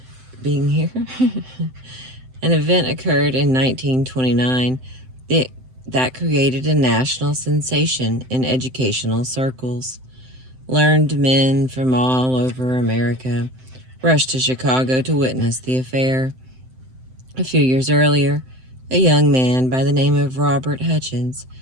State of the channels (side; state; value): left; late; 7.8 ms